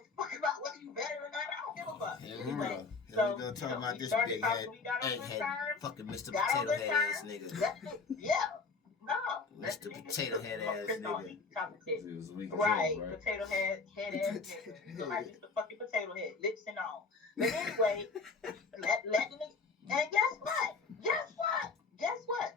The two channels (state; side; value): quieter; right; 4.4 dB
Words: fuck about whether you better or not. I don't give a fuck. Here we Anyway, go. Here so we go talking about we this started big talking, head, we got on good egghead, terms. fucking Mr. Got on Potato good Head ass terms. nigga. That's it. Yeah. No. Mr. Potato Head ass Chris don't nigga. eat chocolate chip. It was weak as Right, hell, right? potato head ass nigga. You look like Mr. fucking Potato Head, lips and all. But anyway, let the nigga. And guess what?